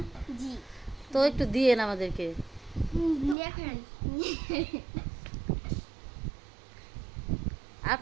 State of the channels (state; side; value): drops out; left; at 3.4 s